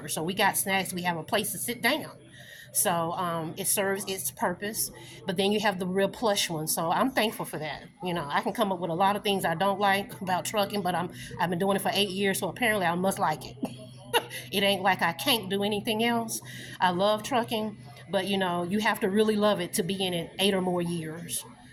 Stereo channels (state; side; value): identical; both; correlation 1.00